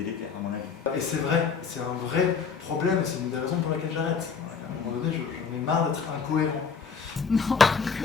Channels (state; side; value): quieter; right; 5.7 dB